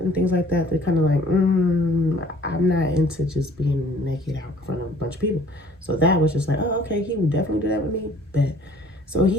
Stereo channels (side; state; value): both; normal; correlation 0.55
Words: things like that, they're kind of like, I'm not into just being naked out in front of a bunch of people. So that was just like, oh, okay, he would definitely do that with me. But so